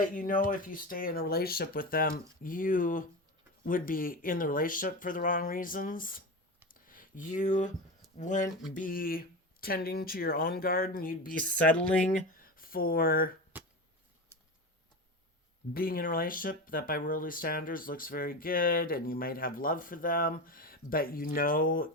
you know, if you stay in a relationship with them, you would be in the relationship for the wrong reasons. You wouldn't be tending to your own garden. You'd be settling for being in a relationship that by worldly standards looks very good, and you might have love for them, but you know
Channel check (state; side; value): normal; both; correlation 0.24